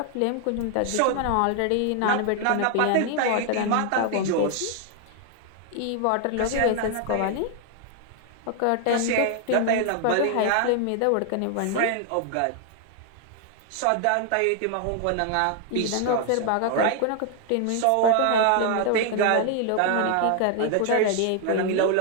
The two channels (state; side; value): different; both; correlation 0.00